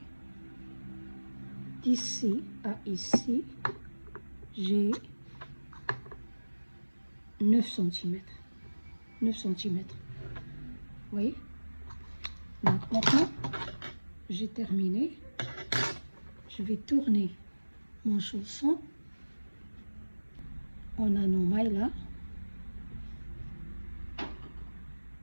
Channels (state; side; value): inverted; both; correlation -1.00